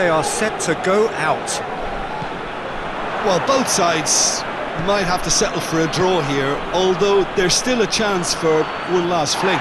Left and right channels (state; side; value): identical; both; correlation 1.00